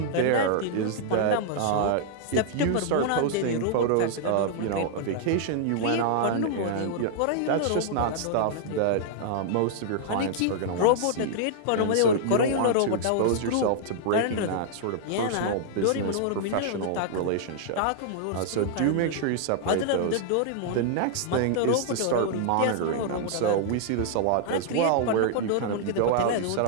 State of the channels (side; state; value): both; different; correlation -0.01